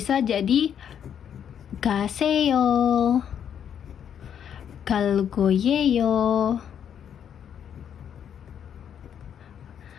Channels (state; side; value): quieter; right; 8.8 dB